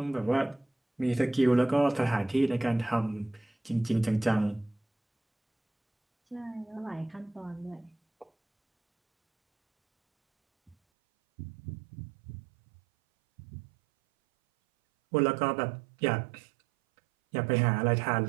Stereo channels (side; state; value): left; drops out; at 10.8 s